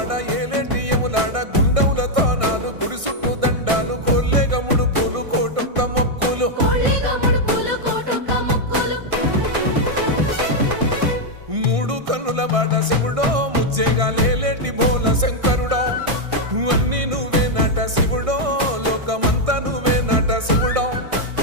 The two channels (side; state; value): left; late; 1.6 ms